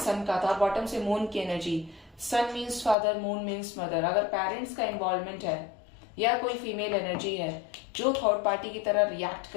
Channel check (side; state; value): right; drops out; at 3.0 s